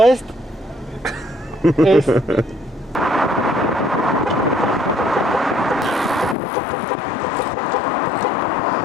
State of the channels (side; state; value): right; drops out; at 6.4 s